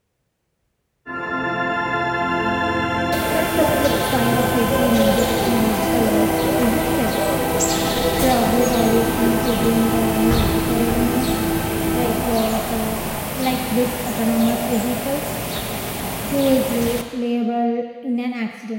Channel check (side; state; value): both; identical; correlation 1.00